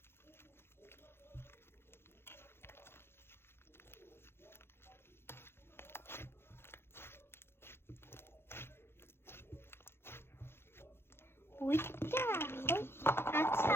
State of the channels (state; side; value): late; right; 0.12 ms